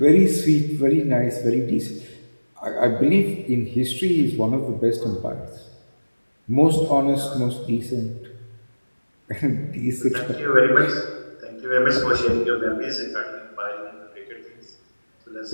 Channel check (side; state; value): both; inverted; correlation -1.00